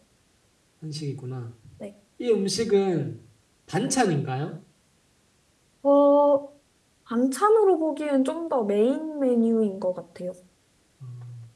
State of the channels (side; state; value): both; identical; correlation 1.00